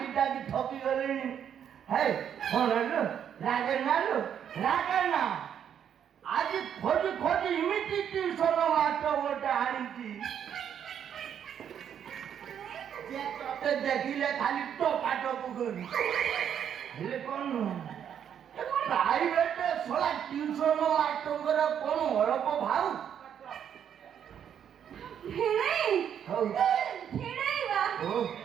ଡାକି ଥକି ଗଲିଣି। ହେ କଣ ଲୋ ରାଗେନା ଲୋ ରାଗେନା। ଆଜି ଖୋଜି ଖୋଜି ଏମିତି ଟ୍ୟୁସନ ମାଷ୍ଟର ଗୋଟେ ଆଣିଛି ଯେ ତତେ ଦେଖିଲେ ଖାଲି ଟୋକାଟକୁ କରି। ହେଲେ କଣ ପ୍ରାଇଭେଟ ଶଳା ଟ୍ୟୁସନ ମାଷ୍ଟରଙ୍କର କଣ ଅଳପ ଭାଉ। ହଉ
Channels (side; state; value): left; quieter; 8.8 dB